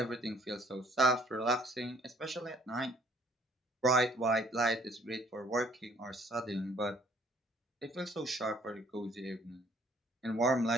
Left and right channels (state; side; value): normal; both; correlation 0.60